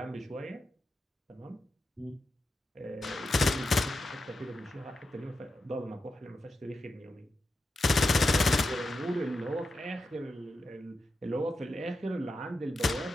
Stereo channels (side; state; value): both; normal; correlation 0.88